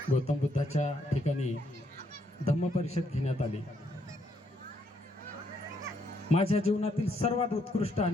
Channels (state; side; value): normal; both; correlation 0.73